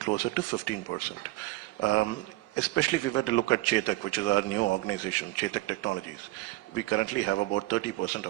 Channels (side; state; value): left; quieter; 19.0 dB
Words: to 15%. Especially if we were to look at Chetak, which is our new organization, Chetak Technologies, we currently have about 30%